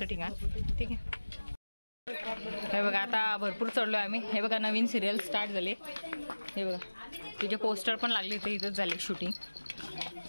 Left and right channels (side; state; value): both; inverted; correlation -1.00